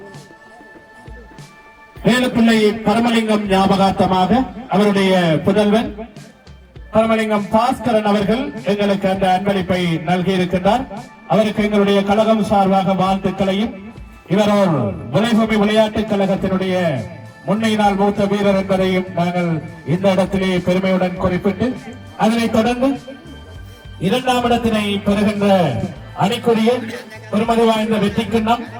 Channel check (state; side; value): identical; both; correlation 1.00